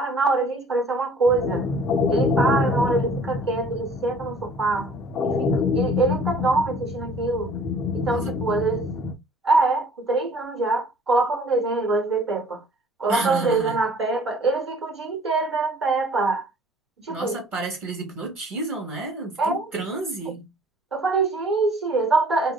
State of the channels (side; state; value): both; normal; correlation 0.53